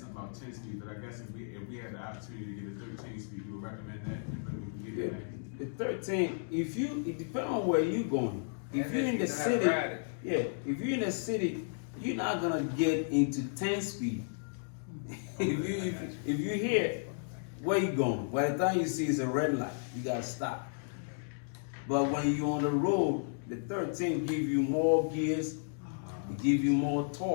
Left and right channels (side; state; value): right; silent; digital silence